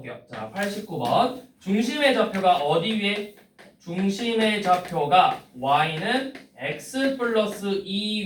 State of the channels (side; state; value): both; identical; correlation 1.00